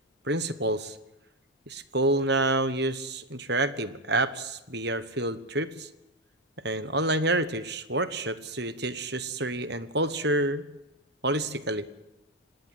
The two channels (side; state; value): both; normal; correlation 0.06